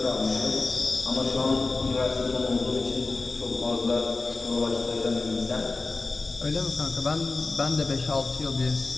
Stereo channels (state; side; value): quieter; right; 3.6 dB